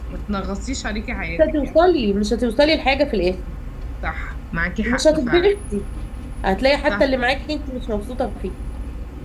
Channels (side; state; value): both; identical; correlation 1.00